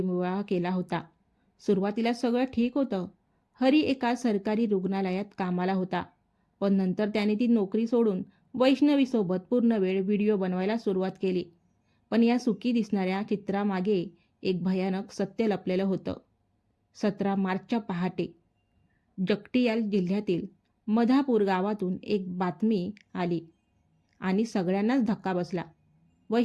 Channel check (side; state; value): both; identical; correlation 1.00